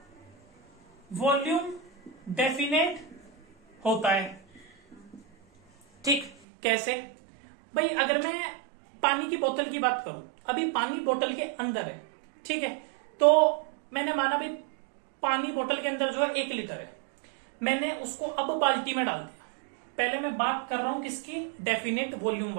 वॉल्यूम डेफिनेट होता है, ठीक। कैसे भाई? अगर मैं पानी की बोतल की बात करूं, अभी पानी बोतल के अंदर है, ठीक है, तो मैंने माना भाई पानी बोतल के अंदर जो है 1 लीटर है, मैंने उसको अब बाल्टी में डाल दिया। पहले मैं बात कर रहा हूं किसकी? डेफिनेट वॉल्यूम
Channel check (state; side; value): drops out; left; at 6.3 s